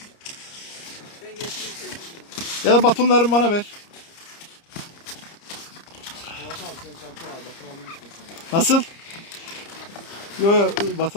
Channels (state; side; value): late; right; 30 ms